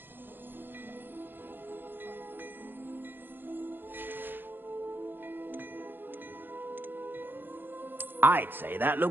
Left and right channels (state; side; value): late; left; 0.098 ms